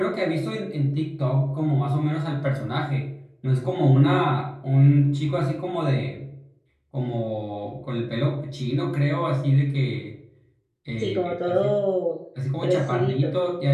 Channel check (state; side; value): identical; both; correlation 1.00